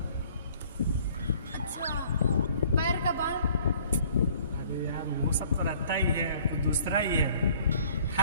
अच्छा, पैर का बाल? अरे यार वो सब तो रहता ही है, वो दूसरा ही है।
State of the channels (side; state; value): both; inverted; correlation -0.56